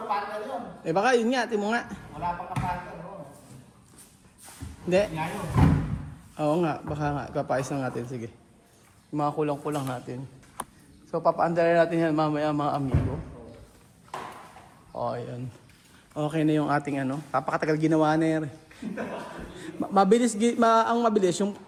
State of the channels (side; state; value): both; identical; correlation 1.00